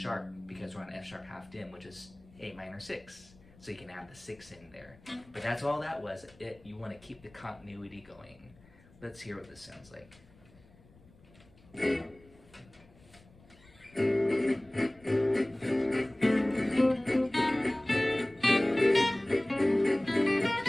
because we're on F sharp half dim, which is A minor 6. so you can add the 6 in there. But that's all that was. You want to keep the continuity going. Let's hear what this sounds like.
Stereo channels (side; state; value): left; noise; rumble, 26 dB below the sound